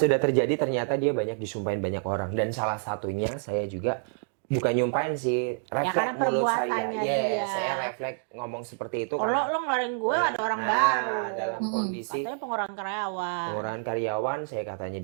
terjadi, ternyata dia banyak disumpahin banyak orang. Dan salah satunya saya juga, bukan nyumpahin sih, karena refleks mulut saya. perbuatannya dia. Saya refleks ngomong seperti itu. Kalau lo ngeluarin gue ada orang baru. Dalam kondisi Katanya pengurangan karyawan. pengurangan karyawan, saya katanya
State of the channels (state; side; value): silent; left; digital silence